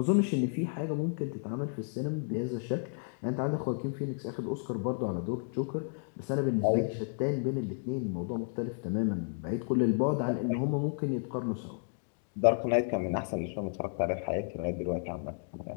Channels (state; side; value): silent; right; digital silence